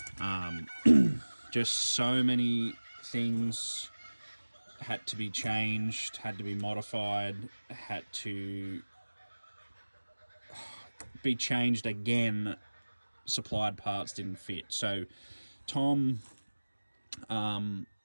Just so many things had to be changed, had to be modified, had to be changed again. Supplied parts didn't fit. So Tom,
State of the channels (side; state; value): both; inverted; correlation -1.00